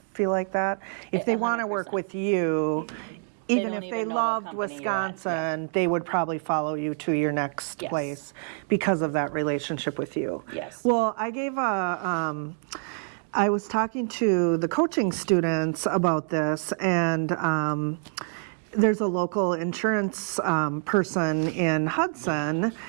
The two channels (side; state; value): left; silent; 61 dB below the other